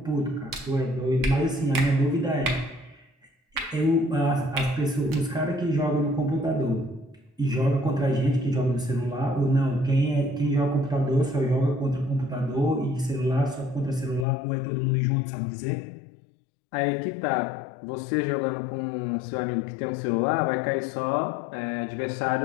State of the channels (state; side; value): drops out; right; at 14.2 s